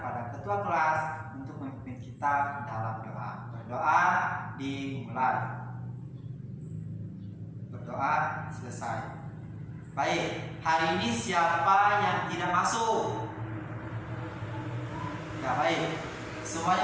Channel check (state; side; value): identical; both; correlation 1.00